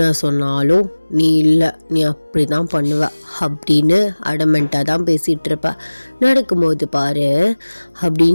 சொன்னாலும் நீ இல்லை, நீ அப்படி தான் பண்ணுவ அப்படின்னு அடமெண்ட்டாக தான் பேசிகிட்டு இருப்ப. நடக்கும்போது பாரு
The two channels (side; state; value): both; inverted; correlation -1.00